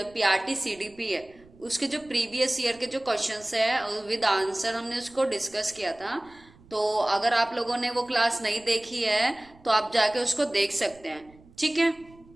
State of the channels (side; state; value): right; noise; rumble, 26 dB below the sound